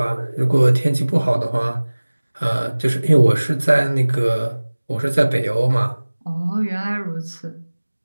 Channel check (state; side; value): inverted; both; correlation -1.00